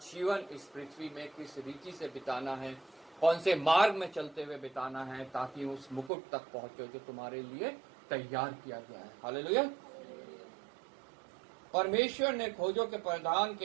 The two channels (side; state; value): left; drops out; at 6.1 s